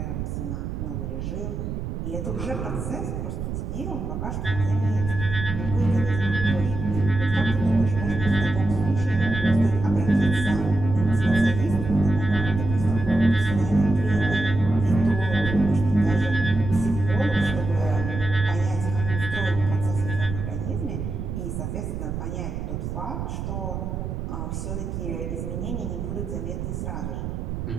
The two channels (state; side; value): noise; right; rumble, 5 dB below the sound